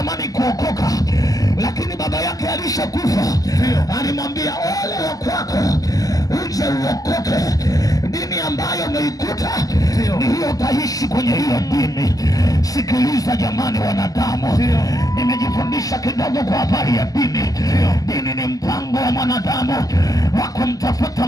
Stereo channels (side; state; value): right; late; 0.17 ms